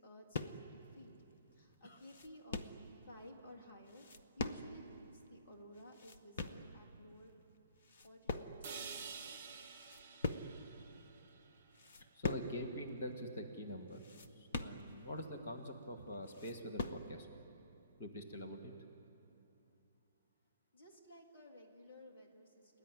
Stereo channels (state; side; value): inverted; both; correlation -0.58